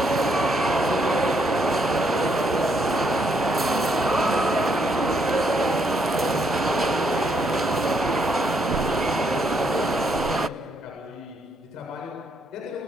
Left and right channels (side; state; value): both; normal; correlation 0.74